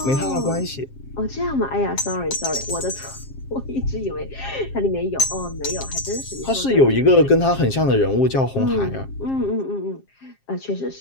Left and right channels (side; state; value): right; late; 7.5 ms